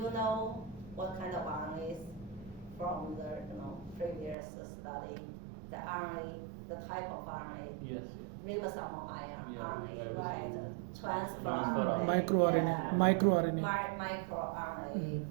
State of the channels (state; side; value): drops out; left; at 4.4 s